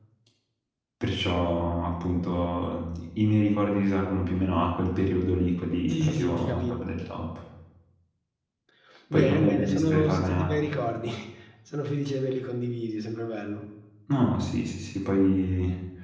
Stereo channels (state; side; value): identical; both; correlation 1.00